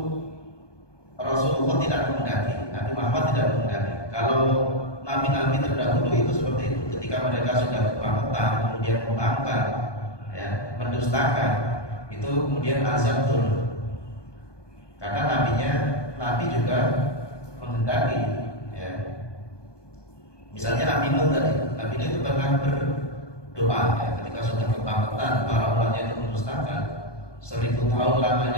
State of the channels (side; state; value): right; late; 1.2 ms